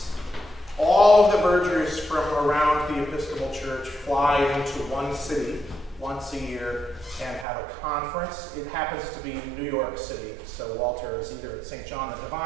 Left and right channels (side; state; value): left; drops out; at 7.5 s